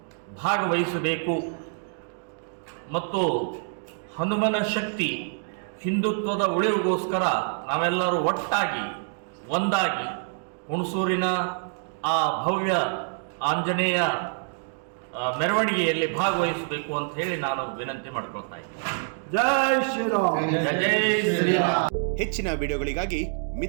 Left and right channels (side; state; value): left; silent; 61 dB below the other